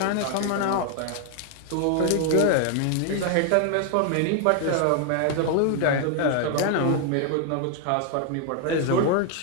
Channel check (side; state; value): both; different; correlation 0.00